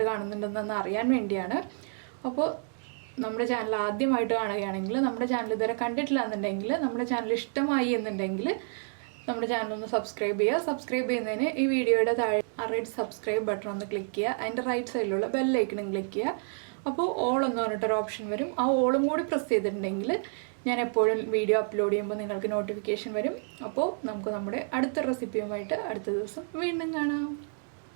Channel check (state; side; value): silent; left; 58 dB below the other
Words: കാണുന്നുണ്ടെന്ന് അറിയാൻ വേണ്ടിയാണ്. അപ്പോൾ നമ്മുടെ ചാനൽ ആദ്യമായിട്ട് കാണുകയാണെങ്കിൽ, നമ്മുടെ ചാനൽ ഇതുവരെ കണ്ടിട്ടില്ല എന്നുണ്ടെങ്കിൽ, നമ്മുടെ ചാനൽ ഇഷ്ടമായി എന്നുണ്ടെങ്കിൽ നമ്മുടെ ചാനൽ ഒന്ന് സബ്സ്ക്രൈബ് ചെയ്യുക. സബ്സ്ക്രൈബ് ചെയ്യുന്നതിന് ഈ വീഡിയോയുടെ താഴെ റെഡ് സബ്സ്ക്രൈബ് ബട്ടൺ ഒന്ന് ക്ലിക്ക് ചെയ്യുക. അതിൻ്റെ റൈറ്റ് സൈഡിലുള്ള ബെല്ലൈക്കണും ക്ലിക്ക് ചെയ്യുക. അപ്പോൾ ഓൾ എന്ന് പറഞ്ഞിട്ടൊരു ഓപ്ഷൻ വരും. ആ ഓളും കൂടി പ്രസ് ചെയ്തിട്ടുണ്ടെങ്കിൽ ഞാൻ എപ്പോഴും വീഡിയോ അപ്ലോഡ് ചെയ്യുമ്പോൾ നിങ്ങൾക്ക് നോട്ടിഫിക്കേഷൻ വരും. അപ്പോൾ നമുക്ക് നമ്മുടെ അടുത്ത റെസിപ്പിയുമായിട്ട് അടുത്ത ദിവസം വീണ്ടും കാണാം.